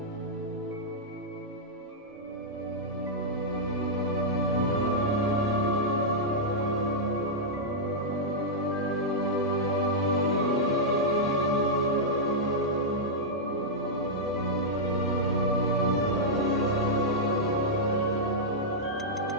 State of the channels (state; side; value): normal; both; correlation -0.08